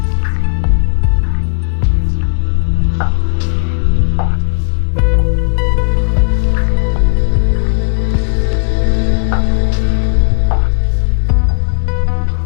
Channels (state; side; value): silent; right; digital silence